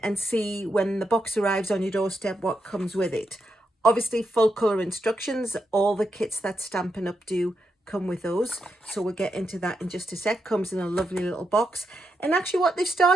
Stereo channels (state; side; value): normal; both; correlation 0.83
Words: see when the box arrives on your doorstep what comes with it. Obviously full color instructions, all the kits that Stampin' Up do come with those. So we'll get into that in just a sec. Comes in a lovely little box. And actually what they've